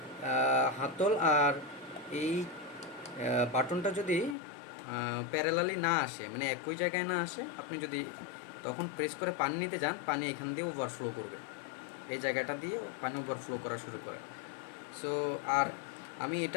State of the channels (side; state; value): right; drops out; at 4.4 s